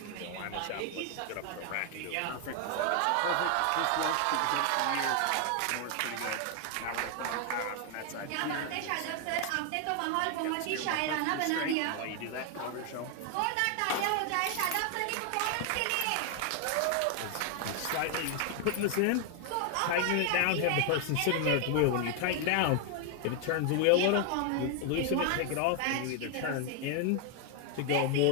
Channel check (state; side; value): different; both; correlation 0.00